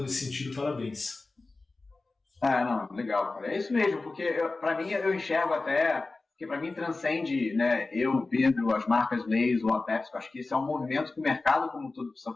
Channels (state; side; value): quieter; right; 3.5 dB